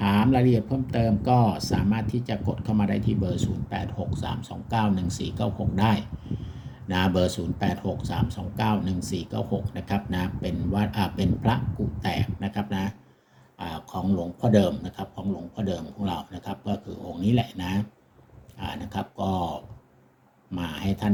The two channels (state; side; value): identical; both; correlation 1.00